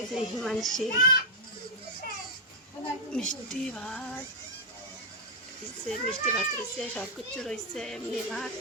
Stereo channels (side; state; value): both; normal; correlation -0.05